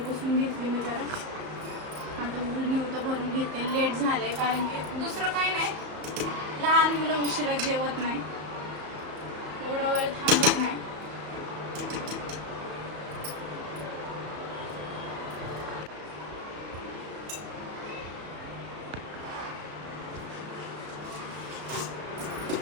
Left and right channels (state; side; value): late; left; 34 ms